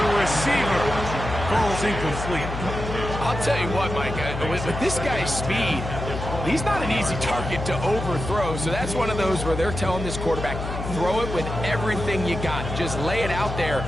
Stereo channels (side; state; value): left; noise; hum, 6 dB below the sound